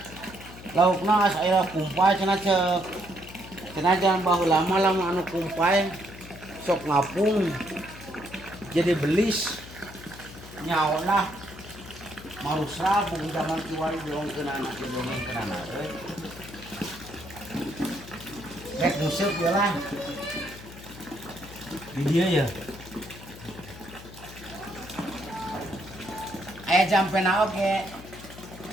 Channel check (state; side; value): noise; left; hum, 16 dB below the sound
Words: Laukna asa aya kumpay cenah ceuk. Cenah jangan baheula mah lamun anu kumpay sok ngapung. Jadi belis nyaolah marusra bung zaman kiwari diongkeun anak didongengkeun anak euy. Rek museup we lah. Di dieu ya. Aya jampena oge.